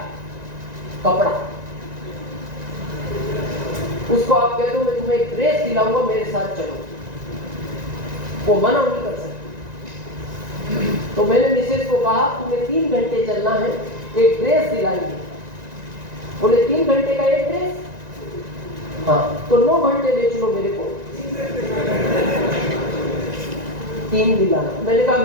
कपड़ा। उसको आप कह दो मैं तुम्हें एक ड्रेस दिलाऊंगा, मेरे साथ चलो, वो मना नहीं कर सकती। तो मैंने मिसेज को कहा तुम्हें 3 घंटे चलना है, एक ड्रेस दिलाएंगे। बोले 3 घंटे का एक ड्रेस? हाँ, तो 9 घंटे ले चलो मेरे को, 3 दिलाना। मैंने कहा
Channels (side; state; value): left; late; 1.9 ms